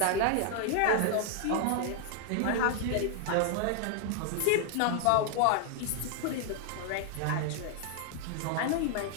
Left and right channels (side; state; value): both; different; correlation 0.00